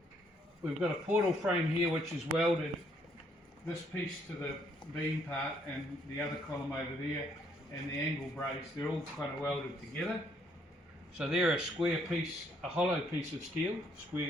We've got a portal frame here which is welded, this piece to the beam part and the other column over there, and the angle brace, they're all kind of welded together. So they're a square piece, a hollow piece of steel,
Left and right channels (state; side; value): normal; both; correlation 0.69